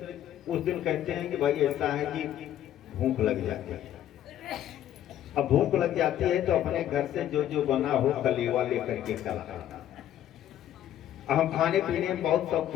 उस दिन कहते हैं कि भाई ऐसा है कि भूख लग जाती है। अब भूख लग जाती है तो अपने घर से जो जो बना हो कलेवा लेकर के चला। हम खाने पीने में बहुत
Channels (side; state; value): right; quieter; 11.5 dB